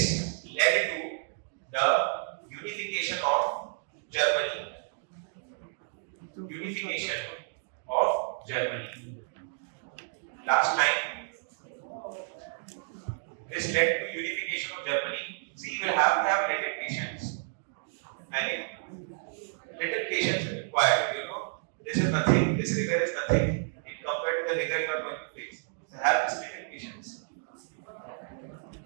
the unification of Germany. Last time, this led to unification of Germany. See, you will have to have little patience. Little patience is required. This is nothing. This rigor is nothing in compared to the rigor you are going to face. So have this little patience.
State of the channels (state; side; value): silent; left; digital silence